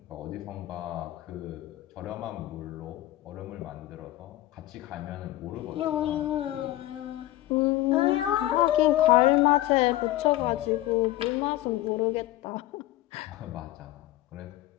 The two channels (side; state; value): right; quieter; 15.6 dB